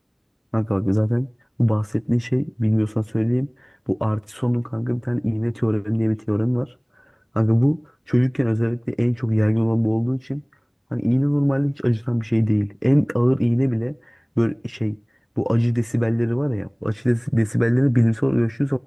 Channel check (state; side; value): identical; both; correlation 1.00